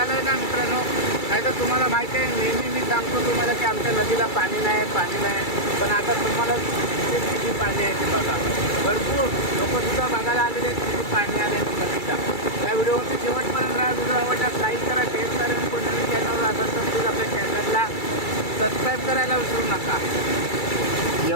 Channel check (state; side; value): late; right; 2.3 ms